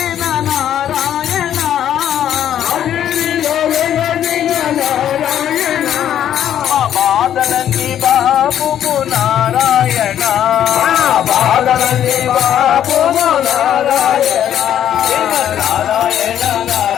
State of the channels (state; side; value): quieter; right; 10.5 dB